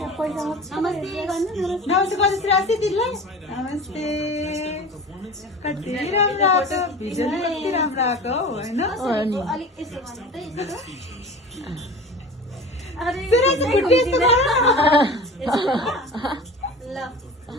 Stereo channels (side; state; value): both; normal; correlation 0.36